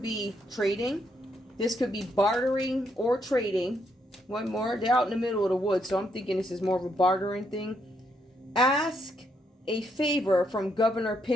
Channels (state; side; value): normal; both; correlation 0.76